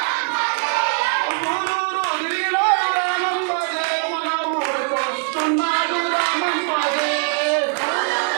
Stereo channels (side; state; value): left; quieter; 36.6 dB